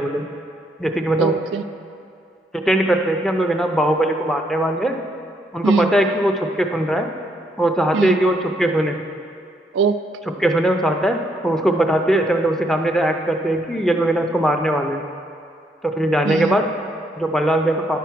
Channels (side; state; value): both; normal; correlation 0.73